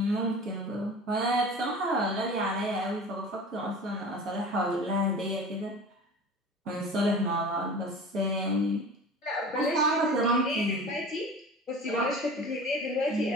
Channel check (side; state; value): both; normal; correlation 0.38